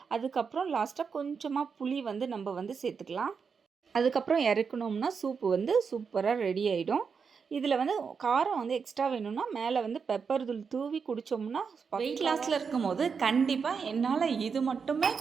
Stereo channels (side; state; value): left; quieter; 5.8 dB